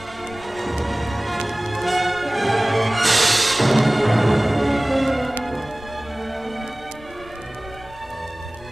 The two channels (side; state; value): both; normal; correlation 0.98